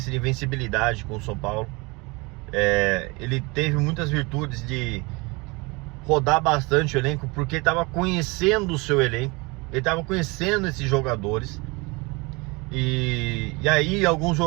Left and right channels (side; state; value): left; quieter; 26.3 dB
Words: de invencibilidade com o São Paulo. Ele teve muitas virtudes de rodar bastante o elenco, porque ele estava conhecendo o seu elenco, ele estava conhecendo esses jogadores. E aí alguns